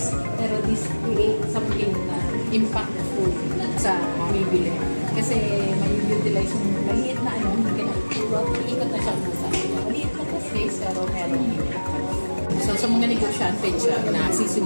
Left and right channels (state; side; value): inverted; both; correlation -1.00